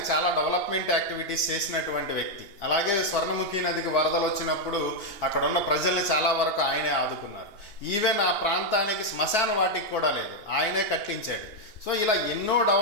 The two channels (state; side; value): late; right; 2.8 ms